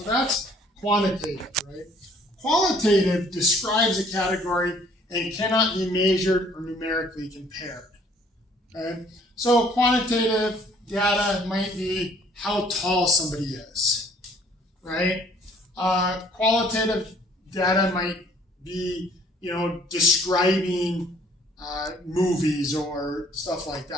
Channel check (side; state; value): both; normal; correlation 0.59